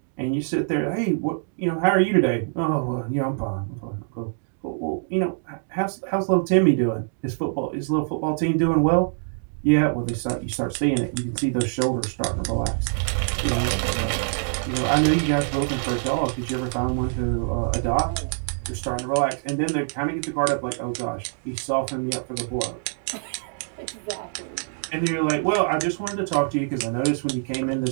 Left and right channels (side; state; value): left; silent; digital silence